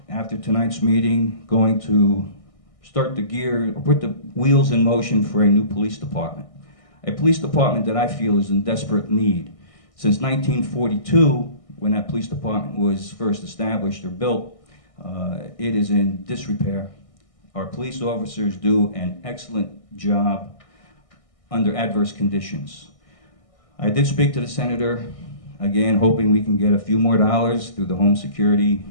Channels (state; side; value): late; right; 1.6 ms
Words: after tonight's meeting, going to start put the wheels in motion for a new police department. A police department that I feel is in desperate need. Since 1942, when that police department was first established or built, it is in disrepair. Our police officers do an excellent job under adverse conditions. I did speak to the senator again, hoping we can get a few more dollars through the Home Security